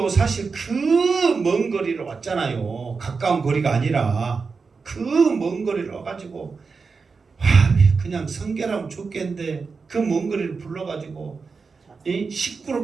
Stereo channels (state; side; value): quieter; left; 4.8 dB